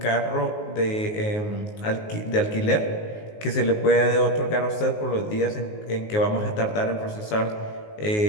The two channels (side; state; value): right; late; 19 ms